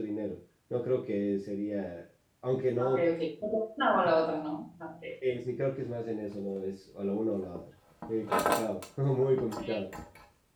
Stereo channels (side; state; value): both; identical; correlation 1.00